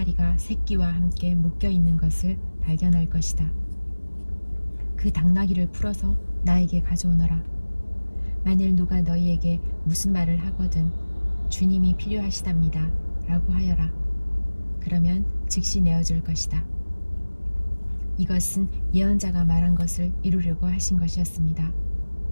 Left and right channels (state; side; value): inverted; both; correlation -1.00